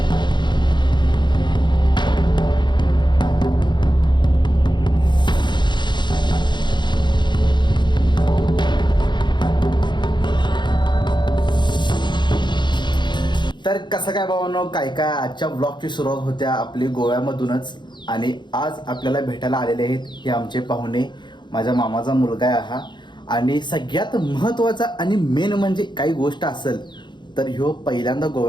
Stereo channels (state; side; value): late; right; 0.22 ms